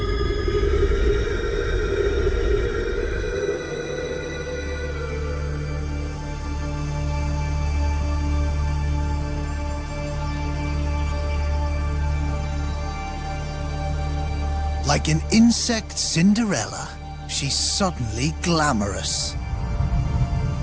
Like an insect Cinderella, she's suddenly glamorous.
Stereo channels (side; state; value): both; identical; correlation 1.00